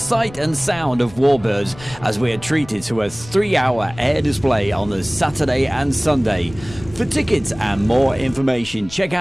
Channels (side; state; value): left; noise; rumble, 18 dB below the sound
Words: and sound of Warbirds as we are treated to a 3-hour air display on the Saturday and Sunday. For tickets and more information, check